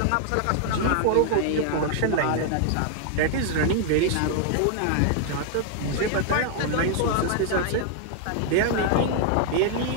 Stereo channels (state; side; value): different; both; correlation 0.00